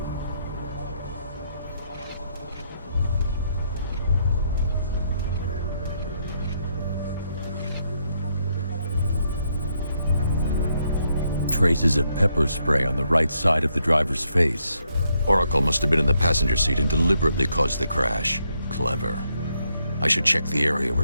Traces of pepper spray on the right side of the driver's face. Oracle must have been in the passenger seat and deliberately caused the crash. Clever. I should check the area where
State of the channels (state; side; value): inverted; both; correlation -0.76